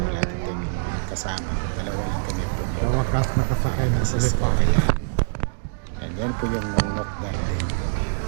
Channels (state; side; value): silent; left; 62 dB below the other